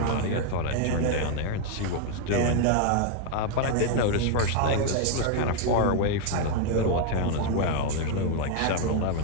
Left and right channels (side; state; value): both; different; correlation 0.01